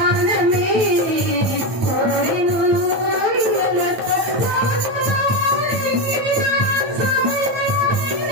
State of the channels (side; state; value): left; late; 9.0 ms